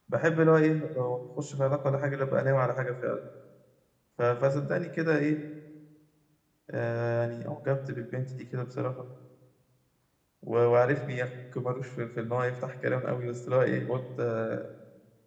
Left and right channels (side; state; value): both; identical; correlation 1.00